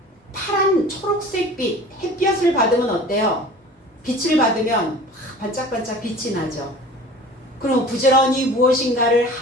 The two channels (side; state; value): both; normal; correlation 0.42